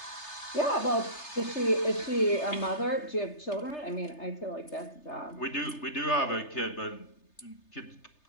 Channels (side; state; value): right; late; 3.3 ms